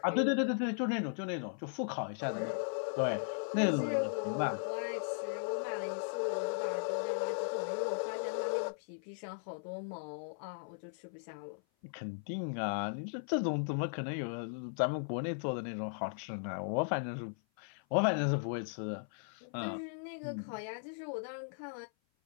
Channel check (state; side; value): silent; right; 53 dB below the other